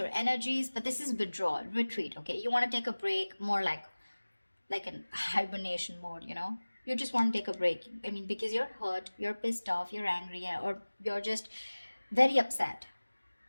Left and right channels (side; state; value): both; inverted; correlation -1.00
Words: energies, but this is withdrawal, retreat. Okay, you want to take a break, more like an hibernation mode. You just want to take a break. I mean, because you're hurt, you're pissed off, you're angry, or you're just very upset,